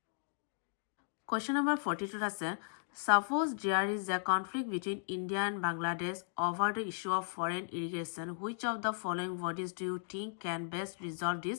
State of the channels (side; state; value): right; silent; digital silence